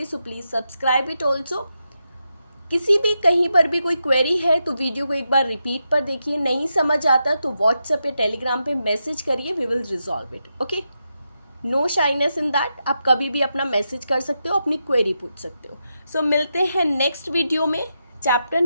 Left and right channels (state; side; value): inverted; both; correlation -0.86